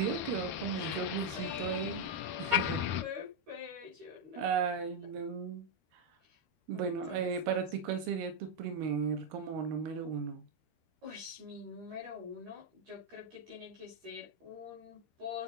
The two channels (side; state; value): left; late; 13 ms